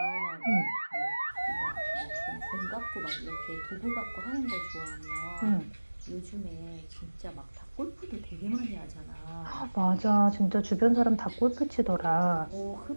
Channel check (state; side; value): inverted; both; correlation -1.00